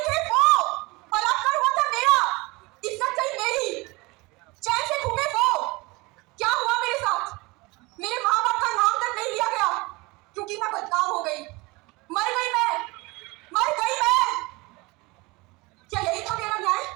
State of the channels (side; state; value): left; quieter; 24.2 dB